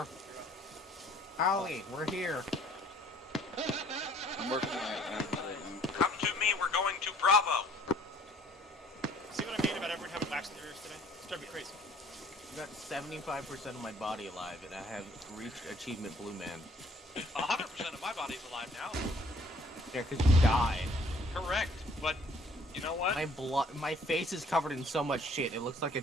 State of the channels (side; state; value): both; normal; correlation 0.58